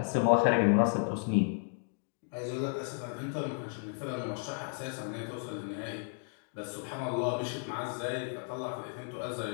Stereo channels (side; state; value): right; silent; 55 dB below the other